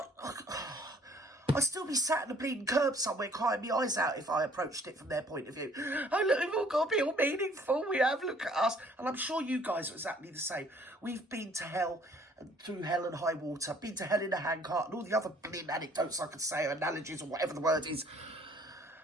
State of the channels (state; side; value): normal; both; correlation 0.59